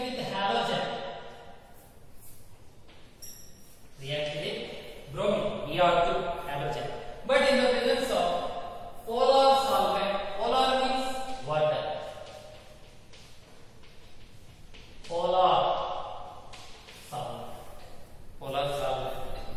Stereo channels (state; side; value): identical; both; correlation 1.00